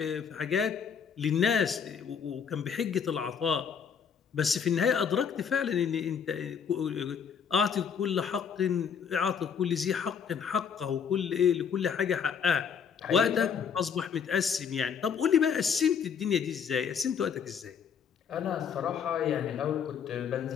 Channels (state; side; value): quieter; right; 7.1 dB